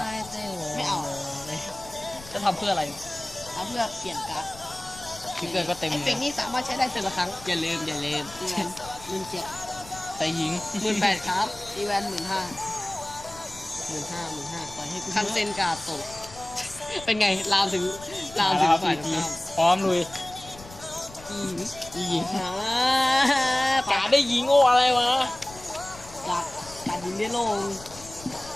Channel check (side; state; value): left; noise; rumble, 18 dB below the sound